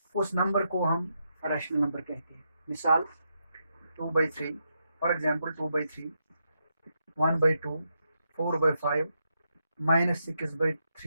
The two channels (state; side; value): inverted; both; correlation -0.83